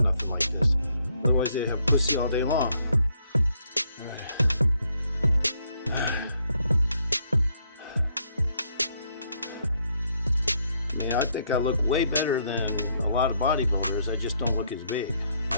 nothing like this. Otherwise, they'd have pussy all day long. Alright. I think I look way better than a lot of bodybuilders. I just don't look as big.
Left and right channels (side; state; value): both; inverted; correlation -0.72